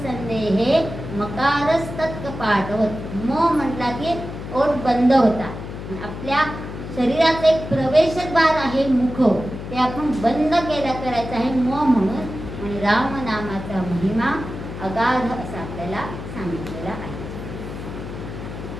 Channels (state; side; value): noise; left; hum, 9 dB below the sound